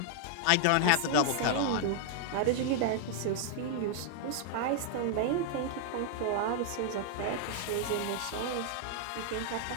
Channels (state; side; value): different; both; correlation -0.01